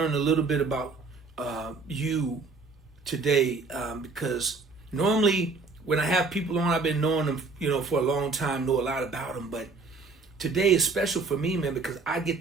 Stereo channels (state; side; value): quieter; left; 4.0 dB